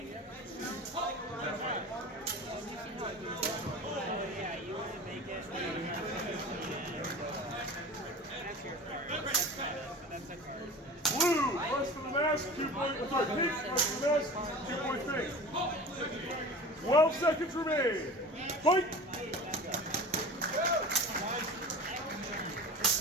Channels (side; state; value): both; normal; correlation 0.36